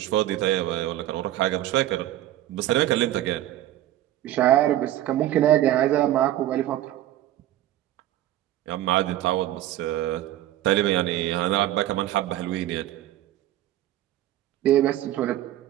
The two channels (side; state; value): left; quieter; 13.6 dB